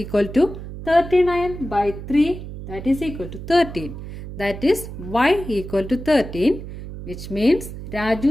to 39 by 3 that is equal to 13. That is y equal to 13 which means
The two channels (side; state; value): right; noise; hum, 10 dB below the sound